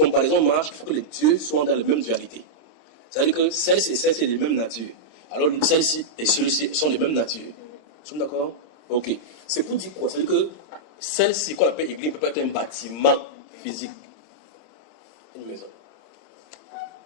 marchent, il faut que les dieux soient dans la même dualité. C'est-à-dire que celle-ci et celle-ci sont de même nature. Alors, celle-ci et celui-ci sont de même nature. Nous sommes d'accord? Ok. C'est pour dire quoi? C'est-à-dire que celle-ci qu'on appelle église peut pas être un bâtiment physique. Une maison.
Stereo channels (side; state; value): right; late; 26 ms